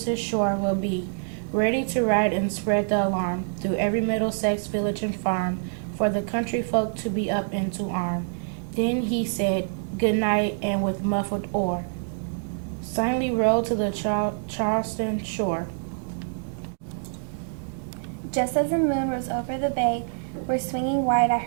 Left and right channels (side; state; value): left; silent; digital silence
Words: shore will be, ready to ride and spread the alarm through every Middlesex village and farm, for the country folk to be up and to arm. Then he said, good night, and with muffled oar, silently rowed to the Charleston shore. Just as the moon rose over the bay, where swinging wide at